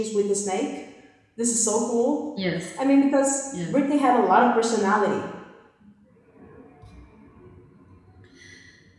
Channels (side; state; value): both; identical; correlation 1.00